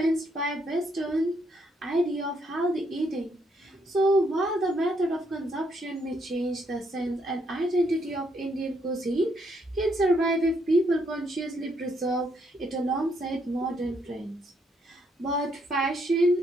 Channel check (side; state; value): both; normal; correlation 0.73